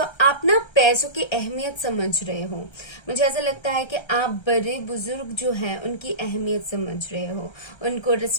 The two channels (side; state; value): right; late; 1.3 ms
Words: आप ना पैसों की अहमियत समझ रहे हो। मुझे ऐसा लगता है कि आप बड़े बुजुर्ग जो हैं उनकी अहमियत समझ रहे हो, उनको